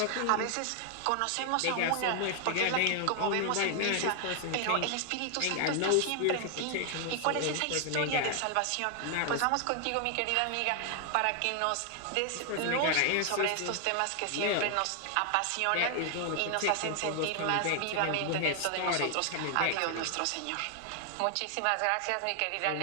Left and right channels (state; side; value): different; both; correlation 0.00